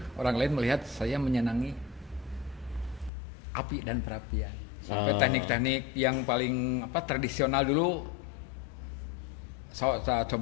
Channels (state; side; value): drops out; right; at 3.1 s